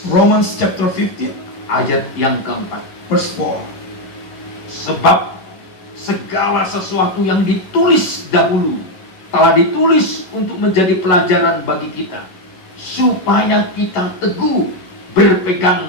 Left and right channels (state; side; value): late; right; 11 ms